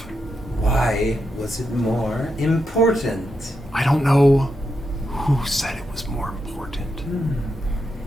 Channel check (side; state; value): both; normal; correlation 0.84